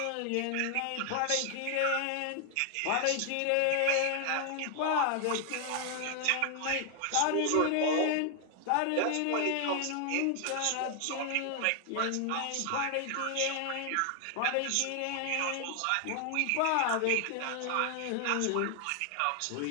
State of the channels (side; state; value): both; different; correlation 0.00